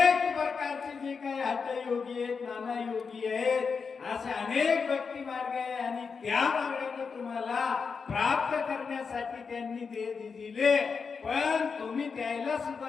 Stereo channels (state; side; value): quieter; right; 5.4 dB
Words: प्रकारचे जे काही हठयोगी आहेत, नाना योगी आहेत, असे अनेक भक्ती मार्ग आहे आणि त्या मार्गाने तुम्हाला प्राप्त करण्यासाठी त्यांनी दिले. पण तुम्ही त्याला